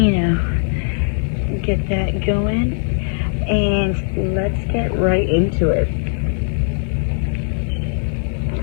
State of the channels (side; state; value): right; silent; 66 dB below the other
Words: get that going, and let's get right into it.